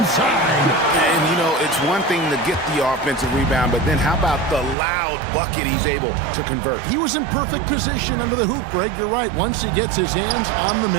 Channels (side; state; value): left; drops out; at 4.8 s